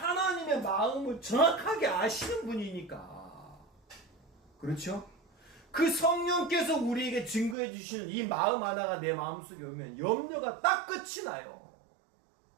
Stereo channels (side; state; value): left; drops out; at 7.6 s